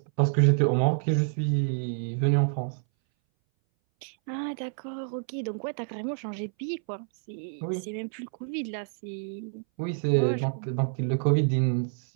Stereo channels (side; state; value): left; silent; 59 dB below the other